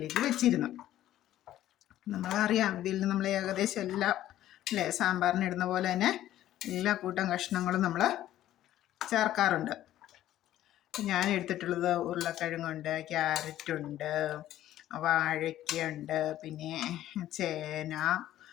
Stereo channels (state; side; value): quieter; right; 13.2 dB